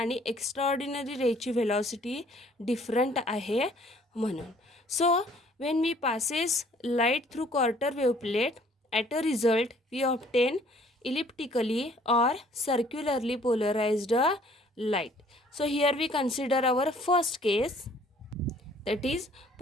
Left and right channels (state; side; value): normal; both; correlation 0.58